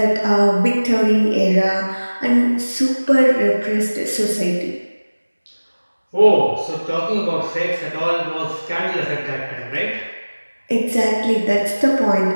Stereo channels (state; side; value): inverted; both; correlation -1.00